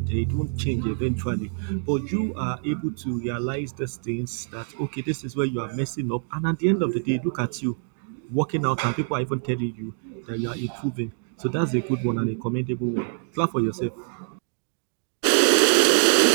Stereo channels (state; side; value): silent; left; 59 dB below the other